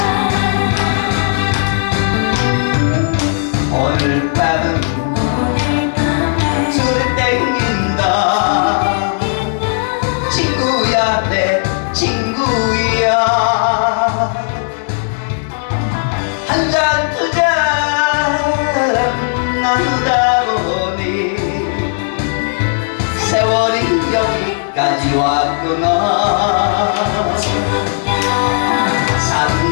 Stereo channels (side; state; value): right; silent; digital silence